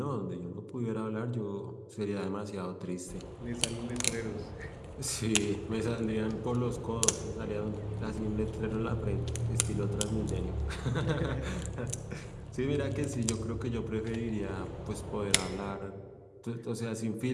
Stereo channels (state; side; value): identical; both; correlation 1.00